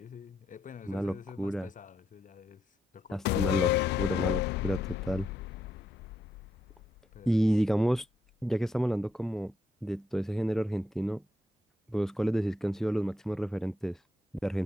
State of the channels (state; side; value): normal; both; correlation 0.79